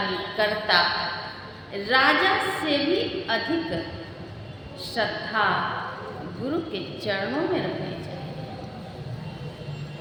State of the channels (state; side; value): identical; both; correlation 1.00